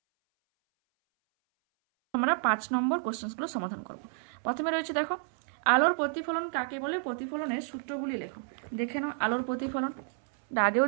আমরা 5 নম্বর কোশ্চেনগুলো সমাধান করব। প্রথমে রয়েছে দেখো, আলোর প্রতিফলন কাকে বলে? প্রতিফলনের সূত্রগুলি লেখো। দেখে নাও আলোর প্রতিফলন, আগেও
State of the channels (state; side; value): silent; left; 57 dB below the other